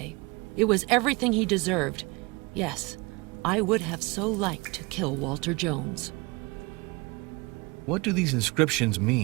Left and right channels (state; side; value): quieter; left; 25.9 dB